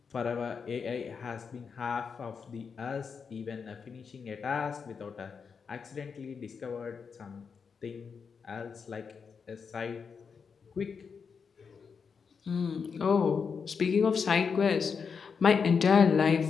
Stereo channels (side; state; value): right; quieter; 5.9 dB